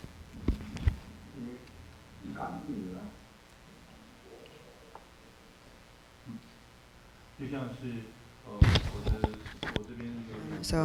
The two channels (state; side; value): identical; both; correlation 1.00